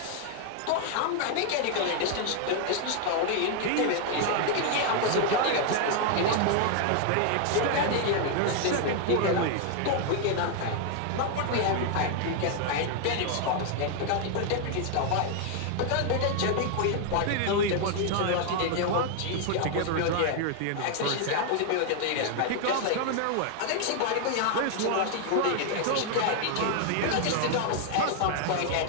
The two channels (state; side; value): different; both; correlation 0.00